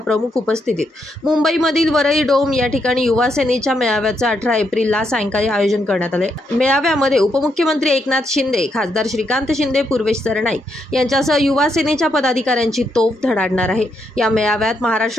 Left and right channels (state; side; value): normal; both; correlation 0.79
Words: प्रमुख उपस्थितीत मुंबईमधील वरळी डोम या ठिकाणी युवा सेनेच्या मेळाव्याचं 18 एप्रिलला सायंकाळी आयोजन करण्यात आले। मेळाव्यामध्ये उपमुख्यमंत्री एकनाथ शिंदे, खासदार श्रीकांत शिंदे, पूर्वेश सरनाईक यांच्यासह युवा सेनेच्या पदाधिकाऱ्यांची तोफ धडाडणार आहे। या मेळाव्यात